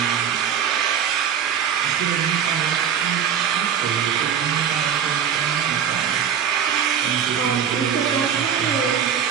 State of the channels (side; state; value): left; quieter; 8.3 dB